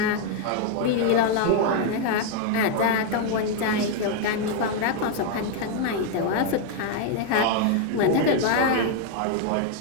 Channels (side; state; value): both; different; correlation 0.00